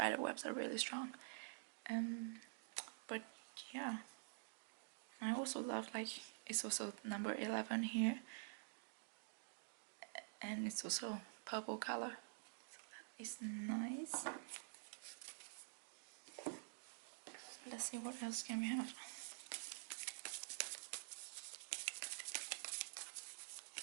webs are really strong. But yeah, I also love like it's also number 11 here, and it's also purple color. It's nice. Let's see what else can we have.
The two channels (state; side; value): silent; left; digital silence